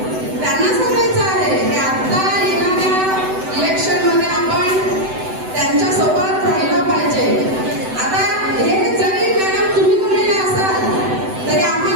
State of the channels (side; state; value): left; late; 7.9 ms